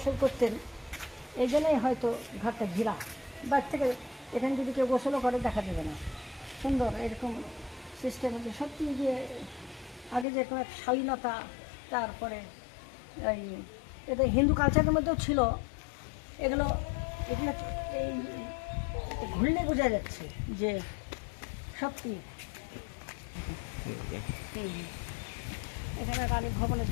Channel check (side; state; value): right; drops out; at 10.2 s